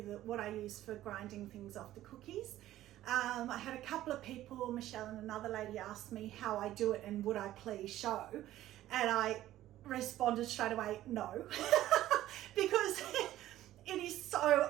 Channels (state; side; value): quieter; left; 14.0 dB